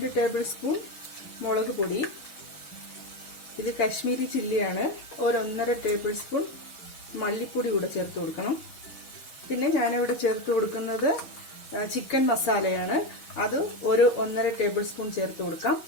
ടേബിൾ സ്പൂൺ മുളക് പൊടി, ഇത് കാശ്മീരി ചില്ലിയാണ്, ഒരു 1.5 ടേബിൾ സ്പൂൺ മല്ലിപ്പൊടി കൂടെ ചേർത്ത് കൊടുക്കണം. പിന്നെ ഞാനിവിടെ ചേർത്ത് കൊടുക്കുന്നത് ചിക്കൻ മസാലയാണ്, അത് ഒരു 1.5 ടേബിൾ സ്പൂൺ ചേർത്ത് കൊടുക്കാം.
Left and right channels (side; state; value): right; late; 6.2 ms